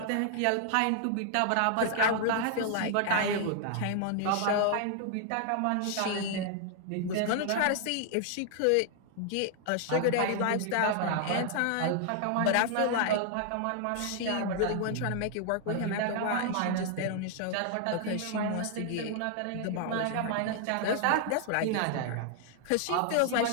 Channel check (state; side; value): different; both; correlation 0.00